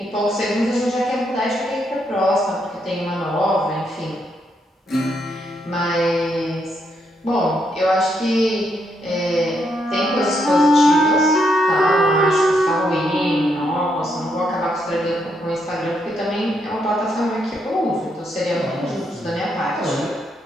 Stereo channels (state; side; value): normal; both; correlation 0.77